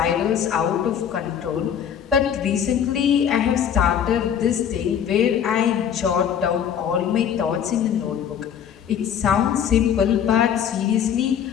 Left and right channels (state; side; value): quieter; right; 8.7 dB